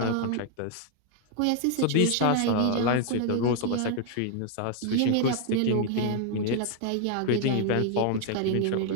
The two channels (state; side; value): different; both; correlation 0.00